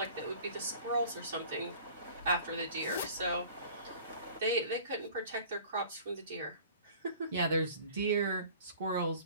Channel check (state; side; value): inverted; both; correlation -0.46